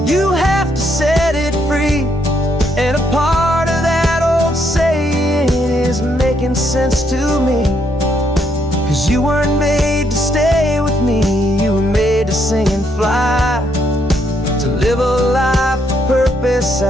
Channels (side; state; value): both; normal; correlation 0.74